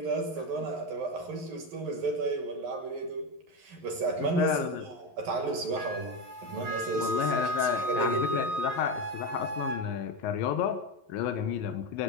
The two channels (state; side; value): late; left; 11 ms